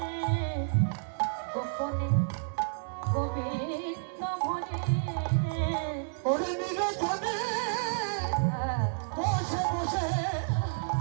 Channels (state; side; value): silent; left; 58 dB below the other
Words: গোপনে গোবিন্দ ভজে, ওরে নিরজনে বসে বসে,